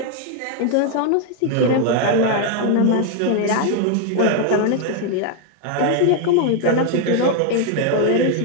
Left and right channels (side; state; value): both; different; correlation 0.00